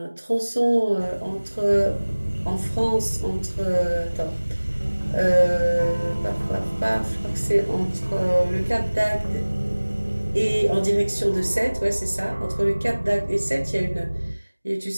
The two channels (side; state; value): both; inverted; correlation -1.00